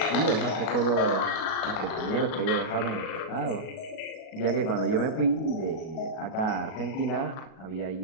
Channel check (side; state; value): right; late; 37 ms